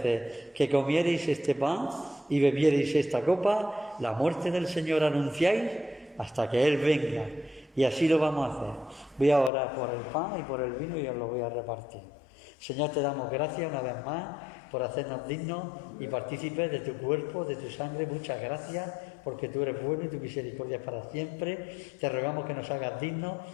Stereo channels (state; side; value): drops out; right; at 9.5 s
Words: que comiereis este pan y bebiereis esta copa, la muerte del Señor anunciáis hasta que Él venga. Y así lo vamos a hacer. Voy a orar por el pan y por el vino y os lo voy a repartir. Señor, te damos gracias una vez más por hacernos dignos y partícipes de tu cuerpo, de tu sangre. Muchas gracias, porque tú eres bueno y tu misericordia es para siempre. Te rogamos que nos hagas dignos.